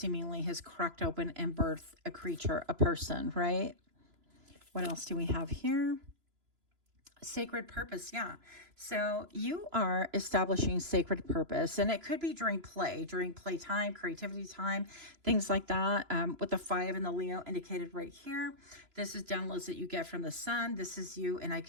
has cracked open and birthed a creature, a person, right? What else do we have here? Sacred purpose. Yeah. So you are establishing sacred purpose, and it could be during playtime, creativity time, things like that. With the 5 and the Leo indicated right here, this is downloads that you get from the sun. This is you. And I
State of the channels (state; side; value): late; left; 3.0 ms